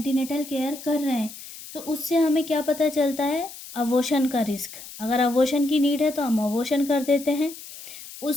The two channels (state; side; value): noise; left; hiss, 14 dB below the sound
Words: केयर कर रहे हैं, तो उससे हमें क्या पता चलता है, अबॉर्शन का रिस्क। अगर अबॉर्शन की नीड है तो हम अबॉर्शन कर देते हैं।